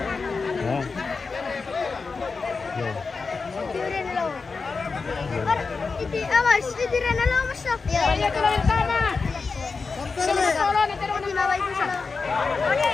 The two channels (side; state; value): right; quieter; 4.5 dB